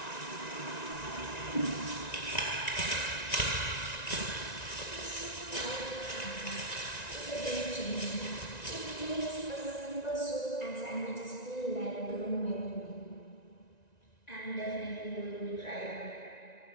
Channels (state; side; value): late; right; 1.9 ms